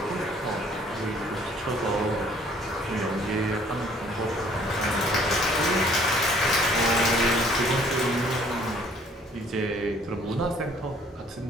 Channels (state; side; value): normal; both; correlation 0.58